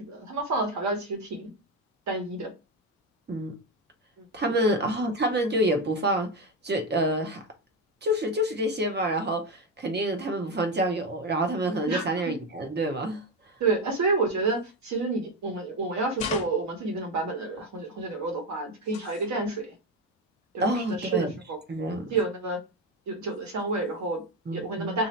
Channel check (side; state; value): both; normal; correlation 0.13